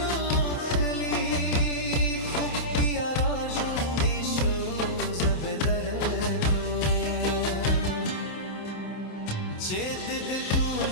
خلی خوب بیا را ژوندی شو زب درتویم چې د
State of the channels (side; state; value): right; late; 27 ms